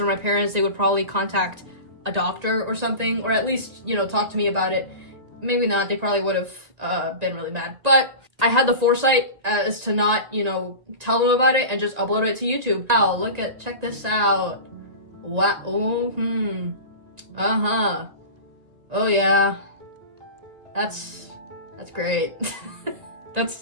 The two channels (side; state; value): left; late; 1.9 ms